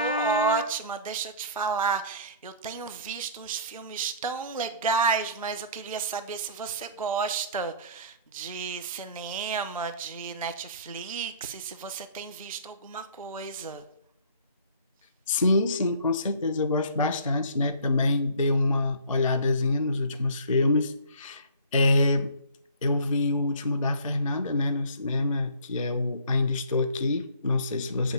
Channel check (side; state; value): both; inverted; correlation -0.50